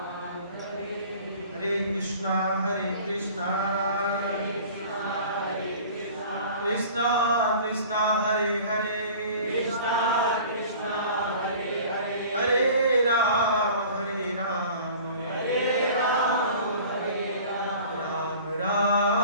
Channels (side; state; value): both; inverted; correlation -0.45